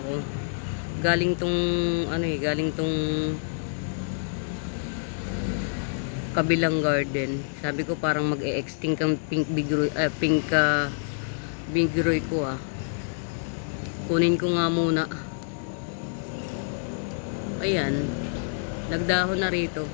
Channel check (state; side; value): silent; right; digital silence